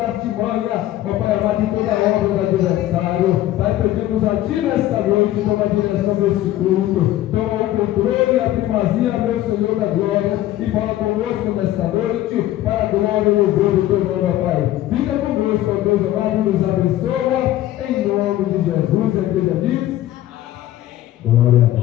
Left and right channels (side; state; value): right; quieter; 14.2 dB